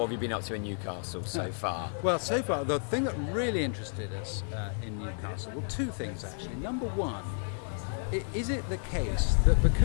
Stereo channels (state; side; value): silent; right; 57 dB below the other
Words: have you been up to in Newcastle so far? Well, so far, the thing that really interested us in Newcastle, well, two things actually. Number one, is it the case that